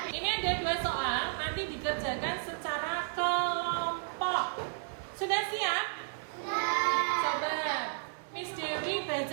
ini ada 2 soal, nanti dikerjakan secara kelompok. Sudah siap? Coba Miss Dewi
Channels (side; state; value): left; silent; digital silence